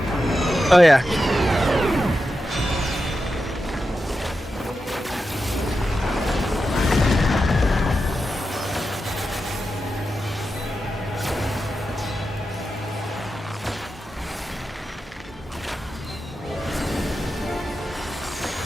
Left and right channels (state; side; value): normal; both; correlation 0.89